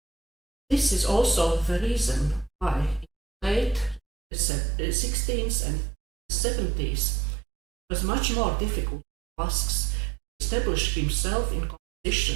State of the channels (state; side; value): drops out; left; at 4.0 s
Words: This is also the reason why in the late 16th and 70s it was much more difficult for Vasks to establish himself in